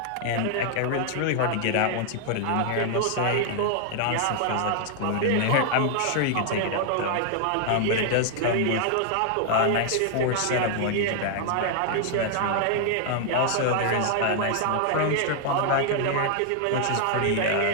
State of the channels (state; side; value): different; both; correlation 0.00